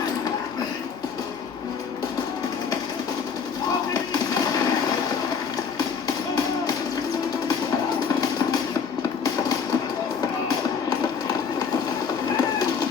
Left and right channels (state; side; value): quieter; right; 6.3 dB